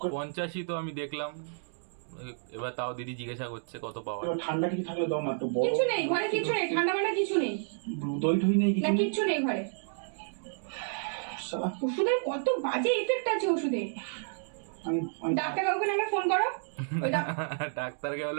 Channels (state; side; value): silent; left; digital silence